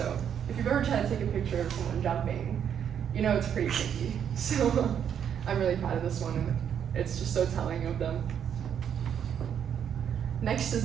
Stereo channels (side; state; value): left; quieter; 8.6 dB